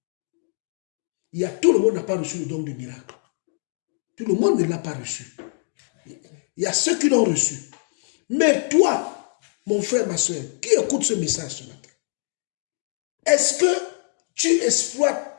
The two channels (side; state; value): right; silent; 60 dB below the other